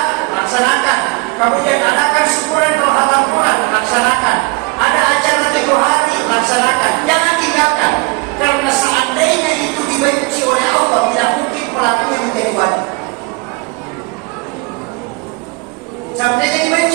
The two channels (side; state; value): left; quieter; 26.6 dB